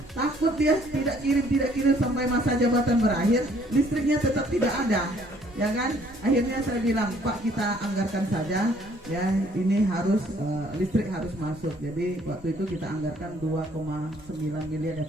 Takut dia tidak kirim sampai masa jabatan berakhir, listriknya tetap tidak ada, ya kan? Akhirnya saya bilang, Pak, kita anggarkan saja ya, ini harus listrik harus masuk. Jadi waktu itu kita anggarkan 2,9 miliar ya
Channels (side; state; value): both; normal; correlation 0.61